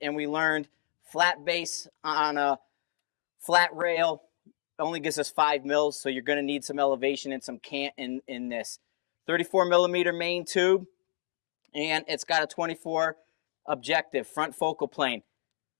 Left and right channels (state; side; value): silent; right; digital silence